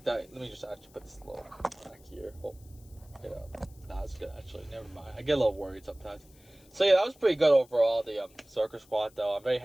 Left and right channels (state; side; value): noise; left; hiss, 27 dB below the sound